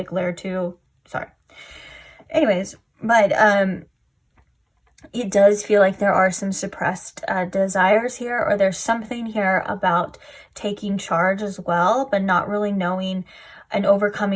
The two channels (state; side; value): identical; both; correlation 1.00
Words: glare too. Sorry. Anyways, but it does feel like there are some suppressed desires here, or there's something here about taking charge as well, but not really knowing and